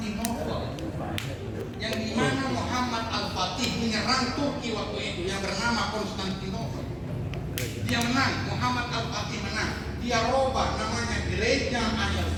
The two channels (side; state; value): both; identical; correlation 1.00